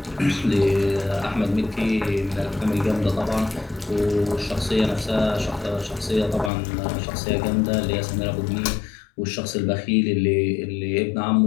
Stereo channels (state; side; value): drops out; right; at 6.5 s